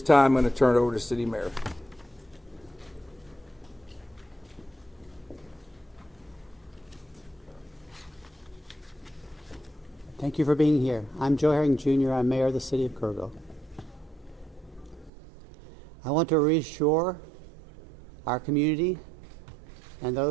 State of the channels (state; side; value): drops out; left; at 15.1 s